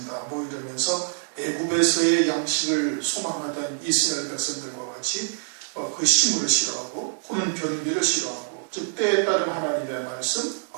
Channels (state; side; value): silent; left; 62 dB below the other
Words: 이러면서 애굽에서의 양식을 소망하던 이스라엘 백성들과 같이 그 식물을 싫어하고 호는 변비를 싫어하고, 즉 때에 따른 하나님의 말씀,